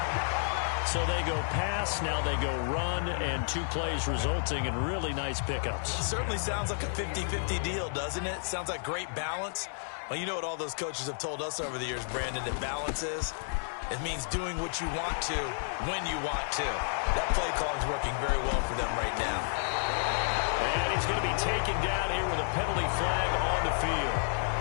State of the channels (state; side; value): silent; right; digital silence